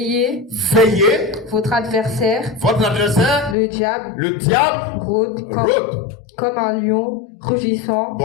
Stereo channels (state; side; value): drops out; right; at 3.6 s